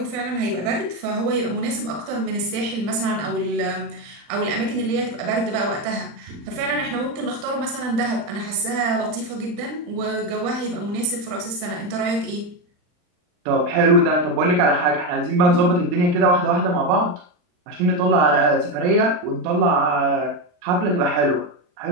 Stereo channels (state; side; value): late; left; 39 ms